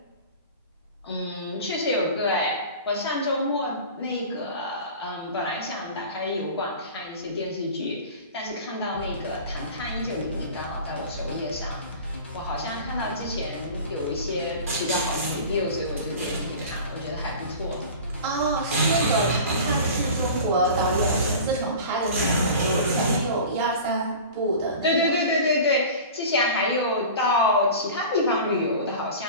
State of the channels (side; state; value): both; inverted; correlation -0.37